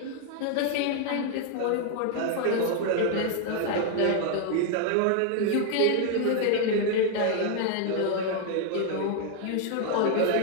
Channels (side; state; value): both; different; correlation 0.00